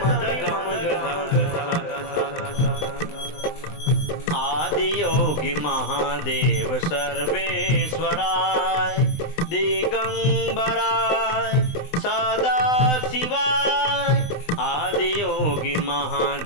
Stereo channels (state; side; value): late; right; 20 ms